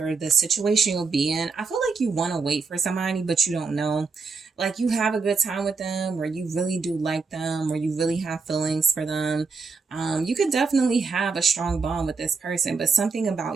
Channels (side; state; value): left; quieter; 4.7 dB